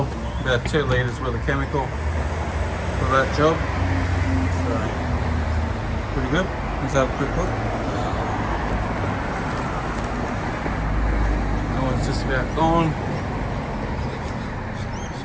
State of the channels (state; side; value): identical; both; correlation 1.00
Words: about 2 litres worth of chemical for that job. So, pretty good. Let's have a quick look. That one's just about gone.